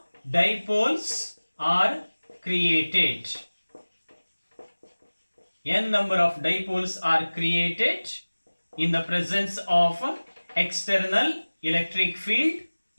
dipoles are created. N number of dipoles are created in the presence of external electric field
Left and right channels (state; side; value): inverted; both; correlation -1.00